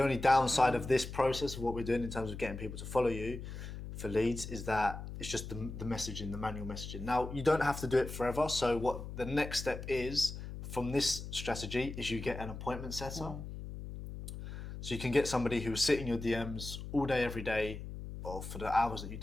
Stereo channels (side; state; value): left; noise; hum, 9 dB below the sound